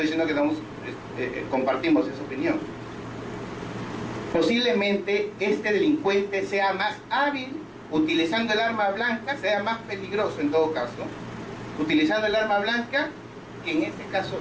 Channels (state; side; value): identical; both; correlation 1.00